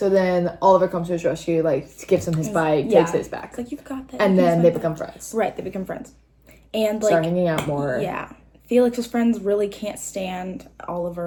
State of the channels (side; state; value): both; identical; correlation 1.00